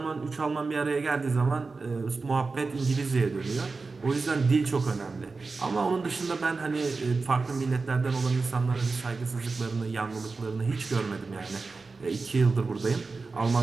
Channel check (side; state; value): left; quieter; 4.1 dB